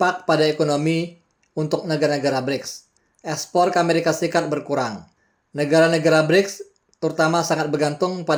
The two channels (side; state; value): both; identical; correlation 1.00